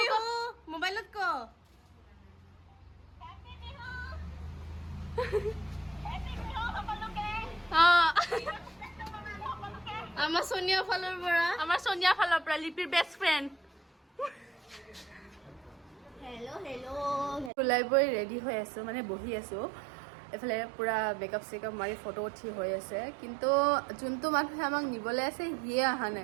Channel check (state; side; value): drops out; left; at 17.5 s